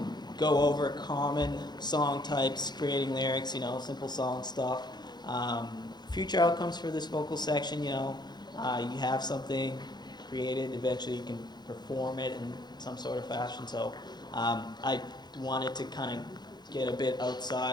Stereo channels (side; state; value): right; late; 0.21 ms